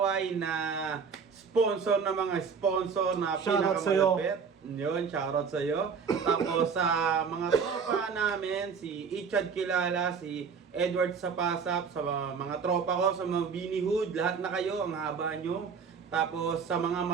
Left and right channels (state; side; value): quieter; left; 5.9 dB